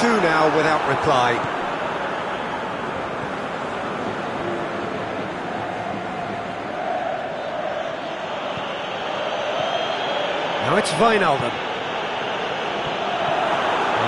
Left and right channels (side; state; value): both; identical; correlation 1.00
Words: now without reply. Now it's Wijnaldum.